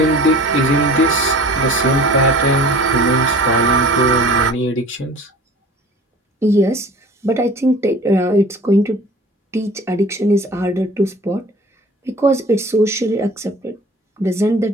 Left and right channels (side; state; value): both; normal; correlation 0.44